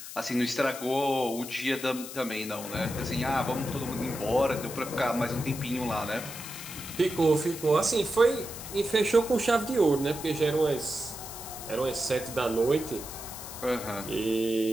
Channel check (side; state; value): left; noise; hiss, 11 dB below the sound